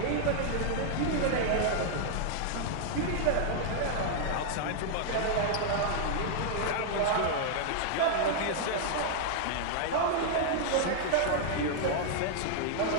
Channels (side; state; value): both; different; correlation 0.00